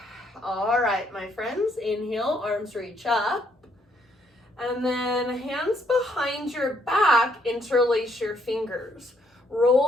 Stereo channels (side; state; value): both; normal; correlation 0.71